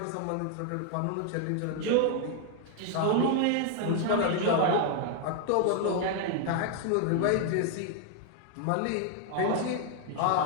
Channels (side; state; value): both; different; correlation 0.00